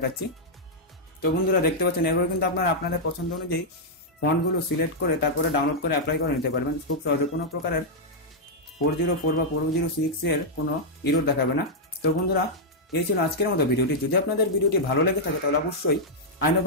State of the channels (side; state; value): both; normal; correlation -0.05